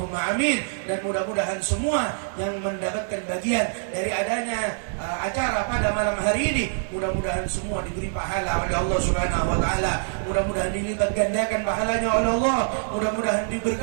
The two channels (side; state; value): left; silent; digital silence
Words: amin. Dan mudah-mudahan semua yang mendapatkan bagian dari adanya acara pada malam hari ini, mudah-mudahan semua diberi pahala oleh Allah Subhanahu wa ta'ala. Mudah-mudahan dilipat gandakan pahalanya oleh Allah, mudah-mudahan